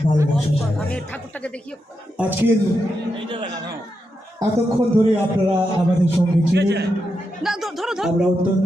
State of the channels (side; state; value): both; normal; correlation 0.85